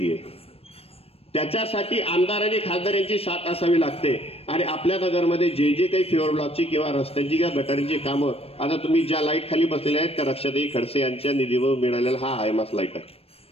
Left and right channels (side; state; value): right; late; 0.28 ms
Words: आहे, त्याच्यासाठी आमदार आणि खासदार यांची साथ असावी लागते। आणि आपल्या नगरमध्ये जे काही फ्युअर ब्लॉकची किंवा रस्त्यांची किंवा गटारींची कामं, आता तुम्ही ज्या लाईट खाली बसलेल्या आहेत त्या रक्षाताई खडसे यांच्या निधीवर मिळालेला हा हायमास लाईट आहे।